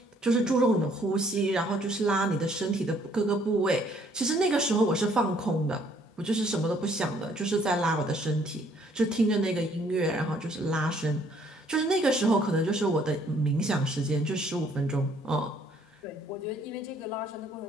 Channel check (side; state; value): both; normal; correlation 0.63